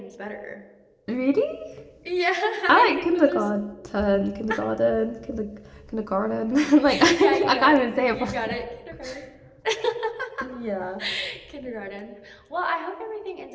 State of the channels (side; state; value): both; identical; correlation 1.00